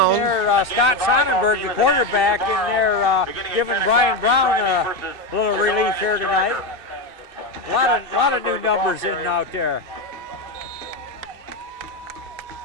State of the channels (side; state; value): left; late; 2.6 ms